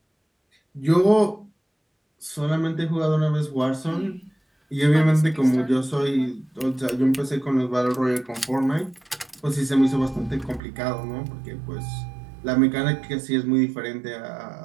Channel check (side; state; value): left; drops out; at 10.6 s